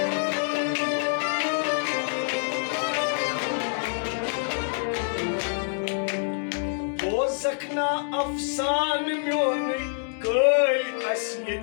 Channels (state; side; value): silent; right; digital silence